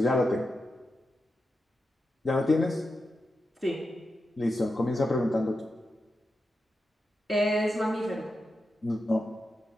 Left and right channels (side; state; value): both; normal; correlation 0.88